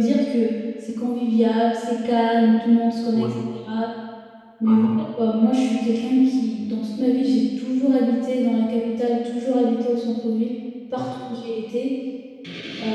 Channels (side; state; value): both; identical; correlation 1.00